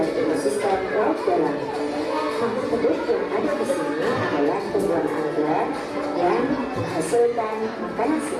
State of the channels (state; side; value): identical; both; correlation 1.00